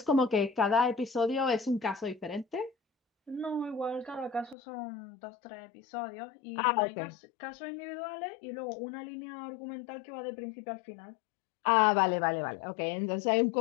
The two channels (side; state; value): right; drops out; at 4.5 s